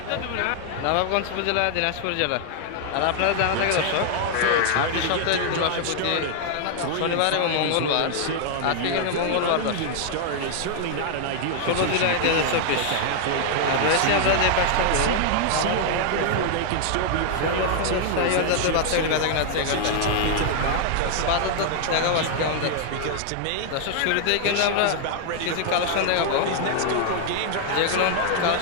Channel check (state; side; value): different; both; correlation 0.00